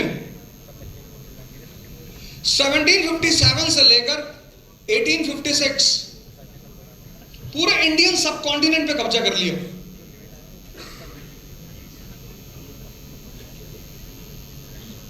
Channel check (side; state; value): both; identical; correlation 1.00